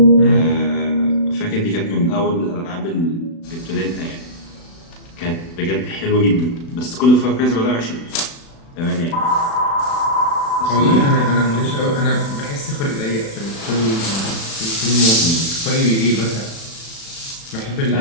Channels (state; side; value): late; right; 36 ms